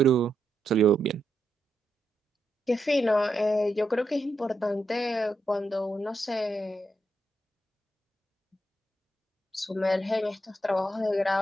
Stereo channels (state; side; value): normal; both; correlation 0.83